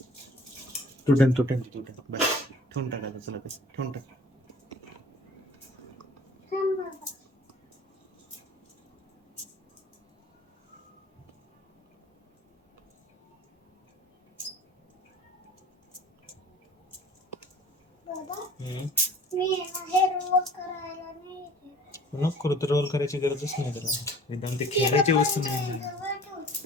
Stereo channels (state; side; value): normal; both; correlation 0.48